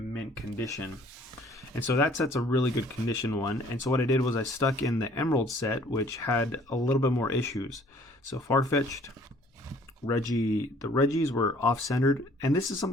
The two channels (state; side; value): normal; both; correlation 0.56